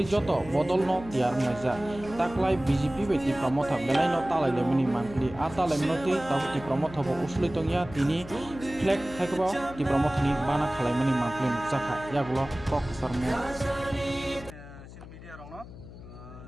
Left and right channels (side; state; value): left; noise; hum, 16 dB below the sound